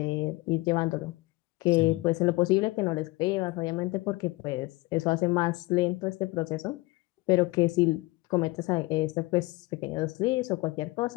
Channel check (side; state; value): right; quieter; 21.8 dB